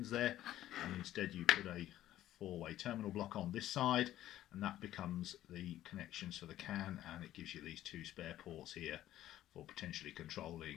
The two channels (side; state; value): right; quieter; 13.4 dB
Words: there, and instead you put a 4-way terminal block on this side, and that becomes the connections for the CAN, and it gives you these 2 spare ports here for potentially